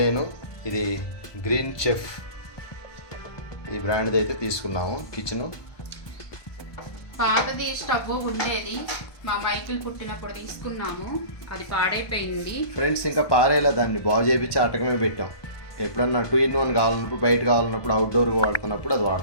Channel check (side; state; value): right; late; 1.2 ms